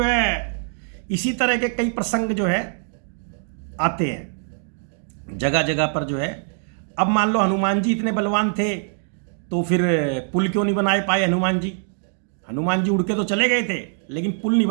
है इसी तरह के कई प्रसंग जो है आते हैं जगह जगह पर जो है। अब मान लो हनुमान जी इतने बलवान थे तो फिर पुल क्यों नहीं बनाए पाए हनुमान जी। हनुमान जी उड़ के तो चले गए थे लेकिन पुल नहीं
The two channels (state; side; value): silent; left; digital silence